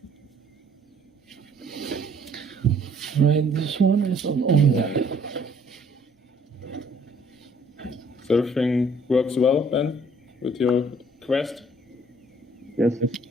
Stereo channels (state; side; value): normal; both; correlation 0.61